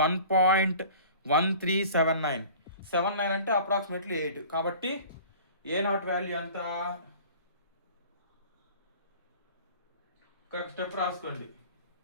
1.1379 అంటే అప్రాక్సిమేట్లీ 8, కాబట్టి ఏ నాట్ వాల్యూ ఎంత, ఒక స్టెప్ రాసుకోండి,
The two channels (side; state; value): both; inverted; correlation -0.44